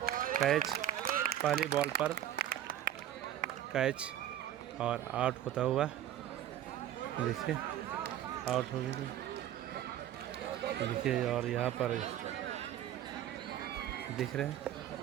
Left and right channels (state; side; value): quieter; left; 11.5 dB